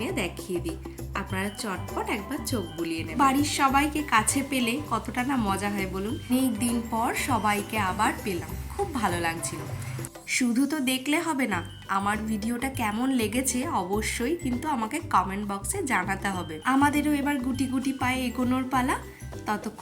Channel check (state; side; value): identical; both; correlation 1.00